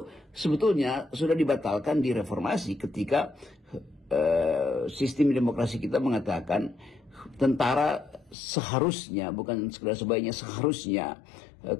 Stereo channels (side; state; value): right; drops out; at 8.3 s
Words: sebetulnya sudah dibatalkan di reformasi ketika sistem demokrasi kita mengatakan tentara seharusnya, bukan sekedar sebaiknya, seharusnya